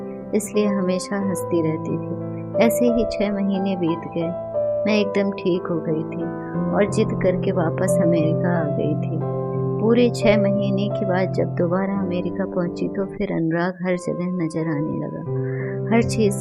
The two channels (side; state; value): both; identical; correlation 1.00